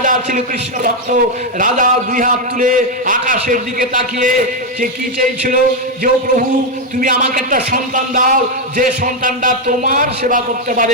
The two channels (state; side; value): normal; both; correlation 0.04